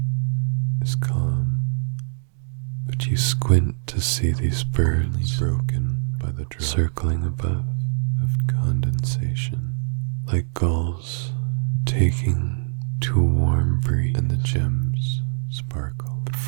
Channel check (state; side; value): silent; left; 63 dB below the other